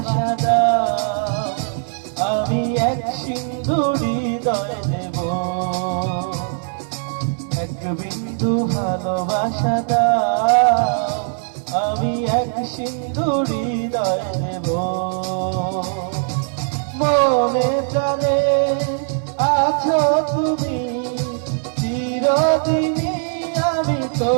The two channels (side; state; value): left; silent; 57 dB below the other